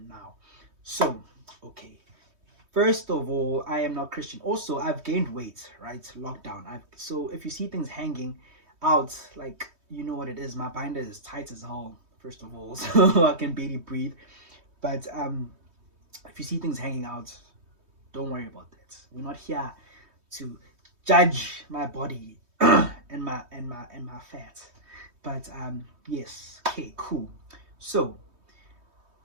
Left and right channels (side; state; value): left; late; 3.2 ms